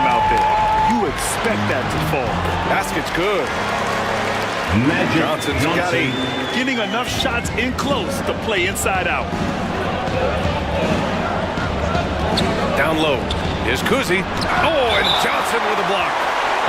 out there. You expect that to fall. Basket's good. Johnson's got 8. Getting enough shots in close to play inside out. Down low. Here's Kuzi. Oh, and Johnson with a block.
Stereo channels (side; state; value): both; identical; correlation 1.00